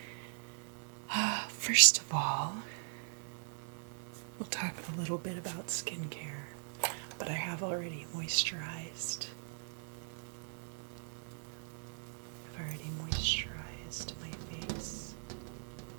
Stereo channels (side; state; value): left; silent; digital silence